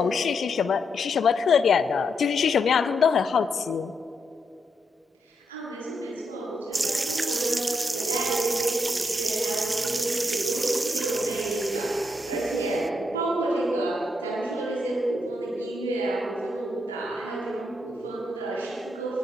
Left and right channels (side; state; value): both; normal; correlation 0.80